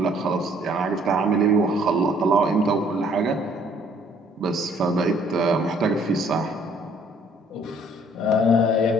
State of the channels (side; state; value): both; normal; correlation 0.60